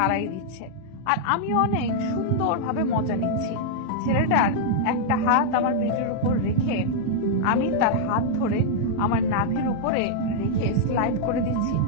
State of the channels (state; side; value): different; both; correlation -0.01